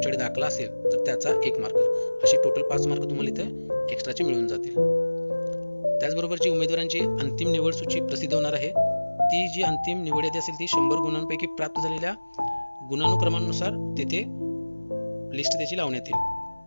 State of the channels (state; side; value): inverted; both; correlation -1.00